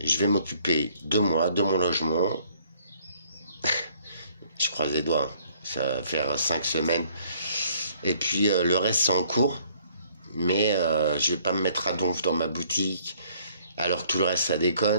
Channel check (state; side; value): inverted; both; correlation -0.62